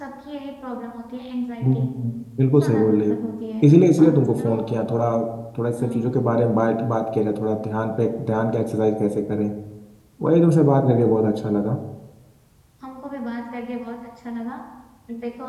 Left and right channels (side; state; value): both; identical; correlation 1.00